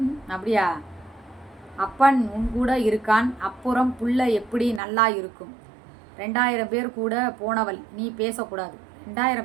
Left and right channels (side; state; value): left; drops out; at 4.8 s